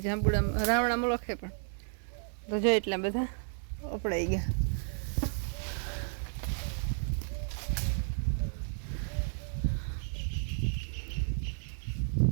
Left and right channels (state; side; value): silent; left; 56 dB below the other